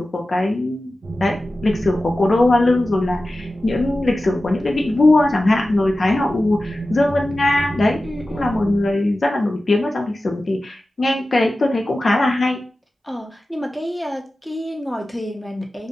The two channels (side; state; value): both; normal; correlation 0.95